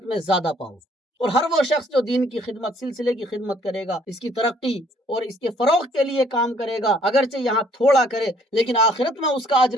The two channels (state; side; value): normal; both; correlation 0.62